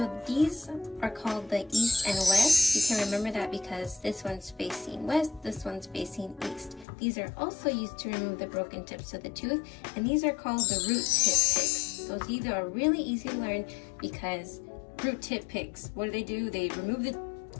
these are called the east and west. You can remember that because this one's facing west, this one's facing east. These are also used to remove the broken tips of the tooth, and these are called the root tip picks. Those are really easy to learn because root tip picks, what do? They remove the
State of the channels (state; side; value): drops out; right; at 6.9 s